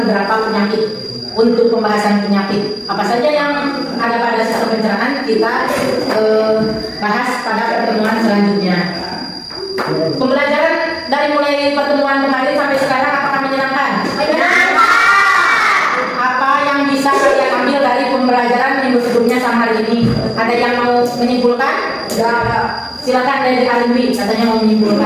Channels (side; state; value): both; identical; correlation 1.00